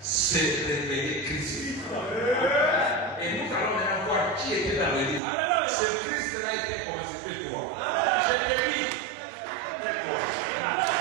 révéler Christ. Et nous allons maintenant voir qui était dans le livre. Ce Christ-là était constitué toi. Je te dis.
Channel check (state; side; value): drops out; left; at 5.2 s